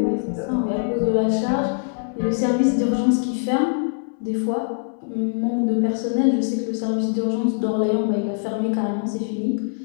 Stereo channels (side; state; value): right; silent; 64 dB below the other